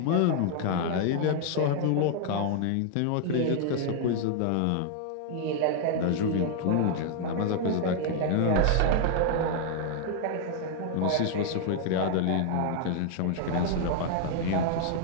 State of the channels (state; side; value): different; both; correlation 0.00